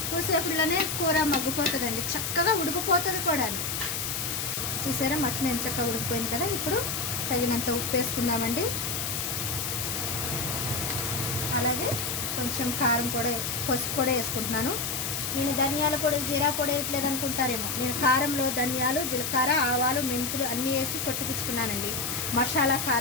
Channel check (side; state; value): left; noise; hiss, 2 dB below the sound